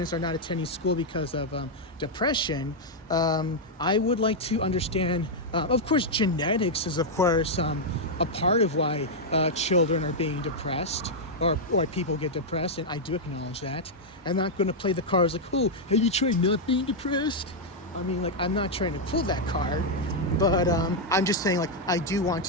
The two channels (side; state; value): both; normal; correlation -0.03